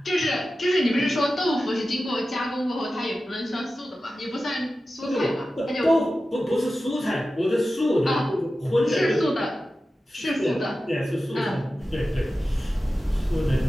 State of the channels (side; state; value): both; normal; correlation 0.94